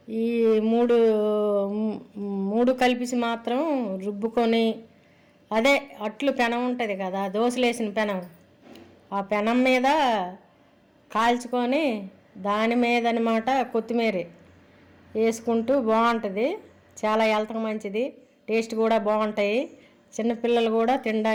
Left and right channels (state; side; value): identical; both; correlation 1.00